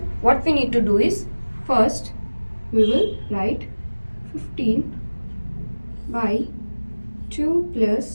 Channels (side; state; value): both; inverted; correlation -1.00